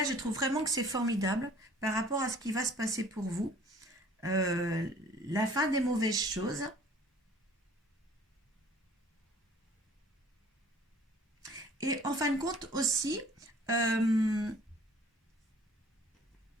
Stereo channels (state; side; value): normal; both; correlation 0.52